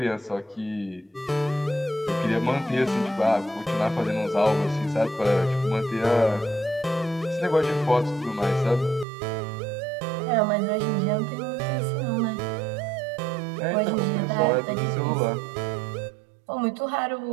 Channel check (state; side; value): drops out; left; at 9.1 s